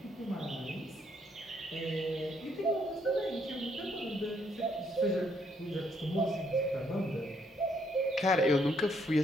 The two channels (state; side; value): normal; both; correlation 0.71